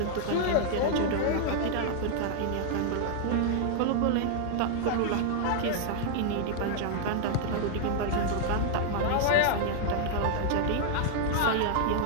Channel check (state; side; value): different; both; correlation -0.01